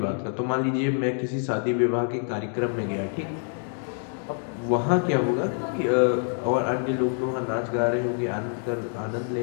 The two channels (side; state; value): right; silent; 56 dB below the other